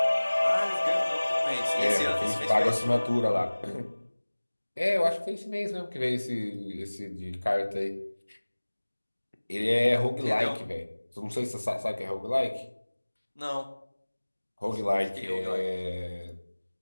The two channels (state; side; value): inverted; both; correlation -1.00